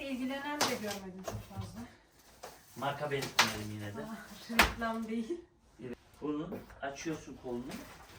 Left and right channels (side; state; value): both; identical; correlation 1.00